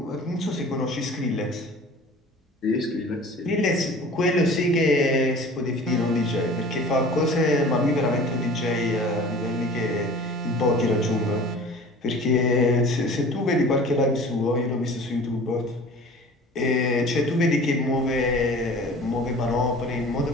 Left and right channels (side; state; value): both; normal; correlation 0.43